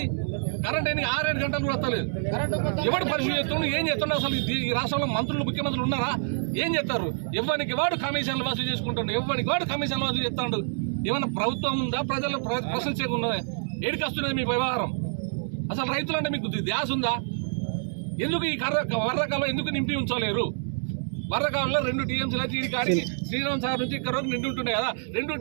కరెంట్ ఎన్ని 6-7 గంటలు కూడా వస్తలేదు. ఎవడు పరిశీలి చేస్తుండు, ఏం చేస్తుండ? అసలు ఈ రాష్ట్రంలో మంత్రులు ముఖ్యమంత్రులు ఉన్నారా? ఏం చేస్తారు? ఎవరికి వాడు కమిషన్లు వసూలు చేసుకుంటాడు, ఎవరికి వాడు కమిషన్లు వసూలు చేస్తాడు. ఏమన్నా ప్రభుత్వం ఉందా? ప్రజలు ప్రశ్నించకుండా ఏడికి వస్తున్నది మీ వ్యవహారం? అసలు రైతులంటే మీకు ధ్యాస ఉందా? ఎందుకు ఈ వరదకాలం ఎందుకు నింపి ఉంచలేరు? వరదకాలంలో 2 టీఎంసీలు అయితే ఈ కాడికి శ్రీరామ్ సాగర్ నుంచి ఇక్కడ వరకు నిండి ఉంటుండే కదా. 2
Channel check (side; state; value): left; silent; digital silence